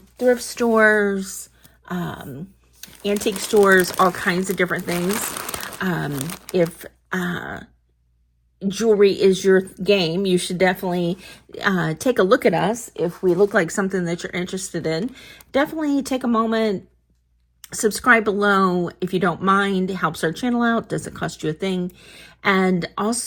thrift stores, antique stores, all kinds of different things. If jewelry is your game, you should definitely take a look at us. If we look like something that you're interested in, definitely take a moment, subscribe below if you don't mind. It helps our channel out, doesn't cost you a thing. And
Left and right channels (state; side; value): identical; both; correlation 1.00